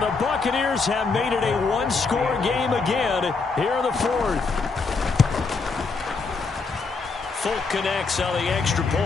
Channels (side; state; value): right; quieter; 4.4 dB